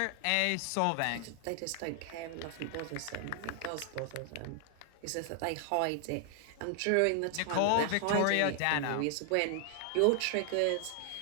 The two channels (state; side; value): different; both; correlation 0.00